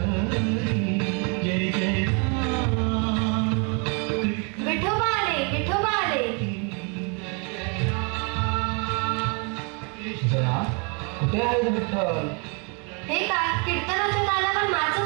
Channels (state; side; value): quieter; left; 35.1 dB